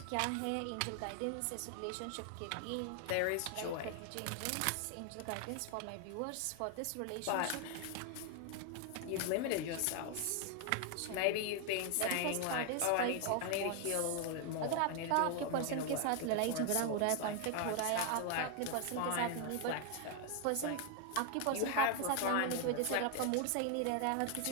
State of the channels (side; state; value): both; different; correlation 0.00